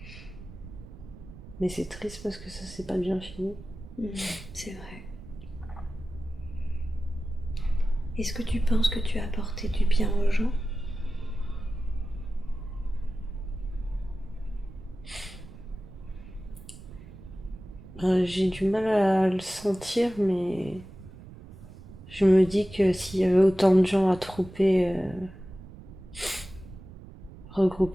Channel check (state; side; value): noise; right; rumble, 17 dB below the sound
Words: Mais c'est triste parce que ça s'est pas bien fini. C'est vrai. Est-ce que tu penses que tu as apporté du bien aux gens? J'ai du mal à le sentir, mais je me dis que s'il y avait autant de gens